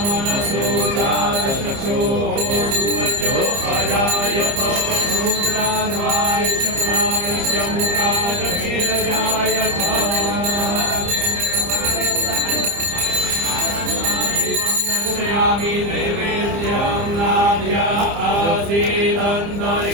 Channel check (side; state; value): left; late; 30 ms